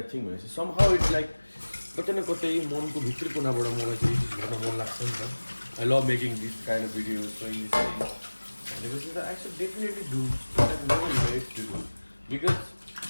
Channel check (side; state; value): both; inverted; correlation -1.00